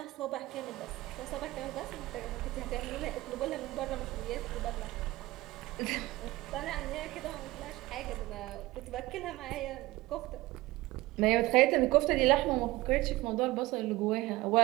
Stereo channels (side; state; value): left; quieter; 19.1 dB